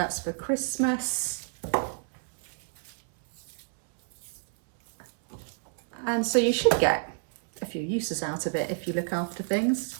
for Christmas. And so you should get a few uses out of it if you look after things.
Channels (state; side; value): silent; left; 59 dB below the other